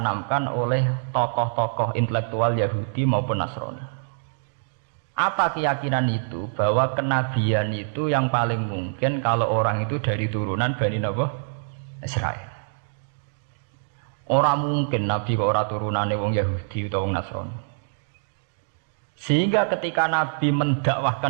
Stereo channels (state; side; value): silent; left; digital silence